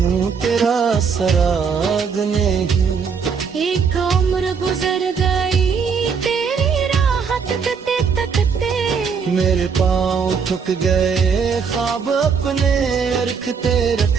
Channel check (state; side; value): quieter; left; 6.0 dB